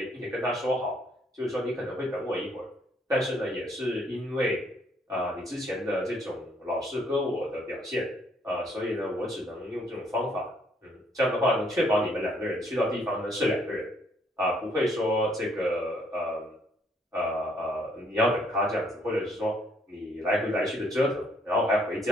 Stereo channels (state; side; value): normal; both; correlation 0.67